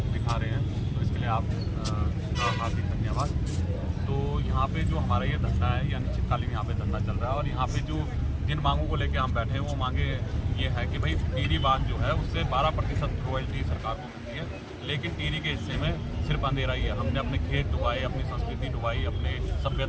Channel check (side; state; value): both; identical; correlation 1.00